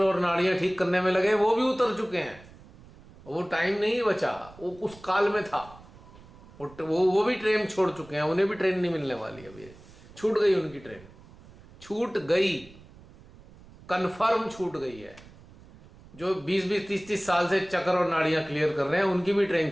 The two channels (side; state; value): right; noise; rumble, 22 dB below the sound